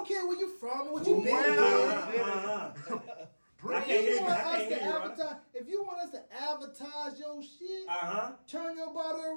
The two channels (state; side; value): inverted; both; correlation -1.00